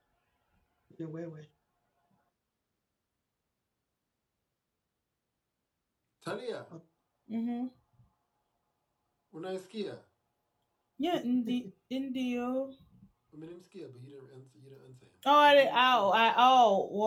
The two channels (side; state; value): both; identical; correlation 1.00